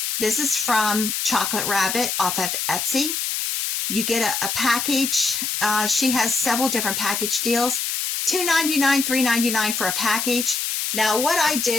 this is from Chocolate Rabbit off of Etsy. You get a package. She has several different package deals. $2.99, $3.99 for a package. Now, what I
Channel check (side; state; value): left; noise; hiss, 1 dB below the sound